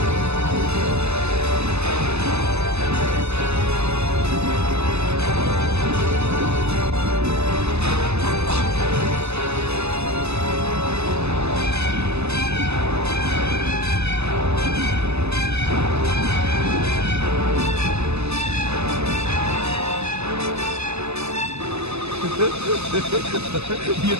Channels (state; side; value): late; left; 0.80 ms